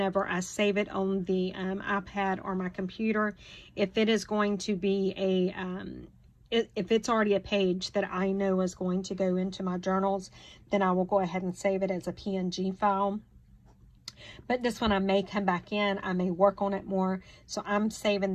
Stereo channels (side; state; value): both; identical; correlation 1.00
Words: I save it on the iPad or my computer, if it is going to be if it's already a page that I know is going to go into my journals, then I will go ahead and save it as a PNG file. But this one, I may come back in, I may work on it more, so I'm